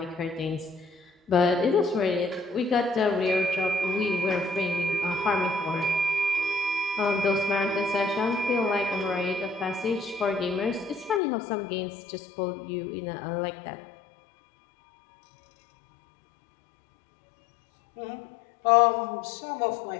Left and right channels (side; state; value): right; drops out; at 11.2 s